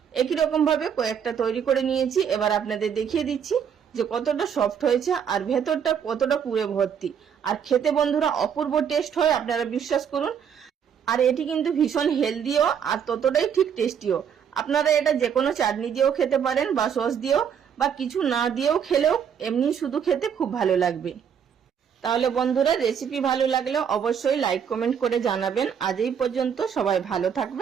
একই রকম ভাবে কয়েকটা তৈরি করে নিয়েছি। এবার আপনাদের দেখিয়ে দিচ্ছি যে কতটা সফট হয়েছে আর ভেতরটা কতটা পুরে ভর্তি। আর খেতে বন্ধুরা অপূর্ব টেস্ট হয়, আপনারা বিশ্বাস করুন। আর এটি কিন্তু ভীষণ হেলদিও আর ততটাই ঠিক টেস্টিও। আপনারা এটা যে কোনো চাটনি দিয়েও খেতে পারেন বা সস দিয়েও বা কিছু না দিয়েও খেলেও এমনি শুধু খেতে খুব ভালো লাগবে। তাহলে বন্ধুরা রেসিপি ভালো লাগলে অবশ্যই লাইক কমেন্ট করে জানাবেন। আজ এই পর্যন্ত, সবাই ভালো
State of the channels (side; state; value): left; quieter; 7.8 dB